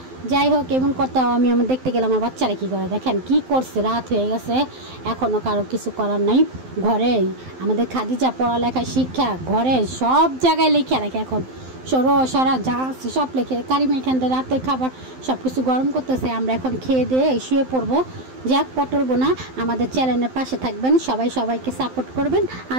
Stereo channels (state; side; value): late; left; 12 ms